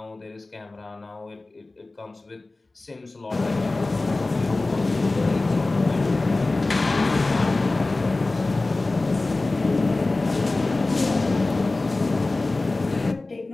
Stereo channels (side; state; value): right; quieter; 3.2 dB